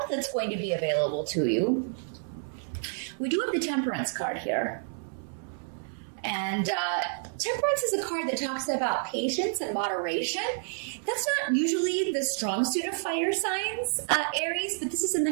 that's going to be available to you. We do have the Temperance card here. And Temperance is a card that talks about patience and moderation. That's not usually the strong suit of fire signs, Aries, but this is in the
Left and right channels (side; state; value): left; silent; 58 dB below the other